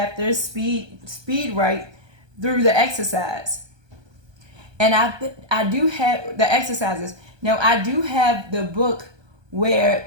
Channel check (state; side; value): late; left; 1.2 ms